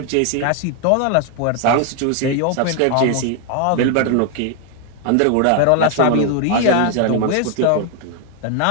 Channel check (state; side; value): different; both; correlation 0.00